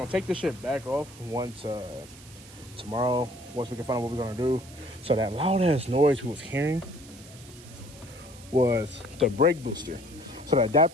take this shit back off once tomorrow, once we can find out what we're gonna do. So that loud ass noise we was hearing was the brake booster. So the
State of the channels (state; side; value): noise; right; hiss, 20 dB below the sound